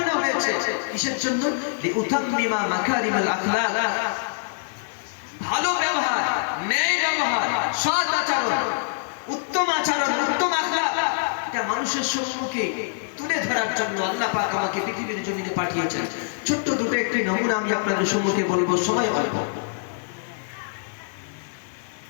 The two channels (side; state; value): right; silent; digital silence